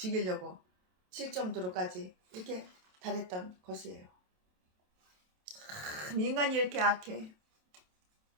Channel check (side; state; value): left; late; 27 ms